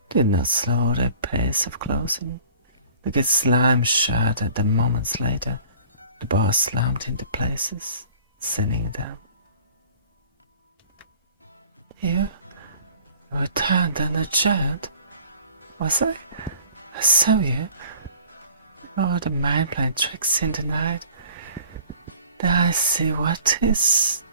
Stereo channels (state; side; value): inverted; both; correlation -0.49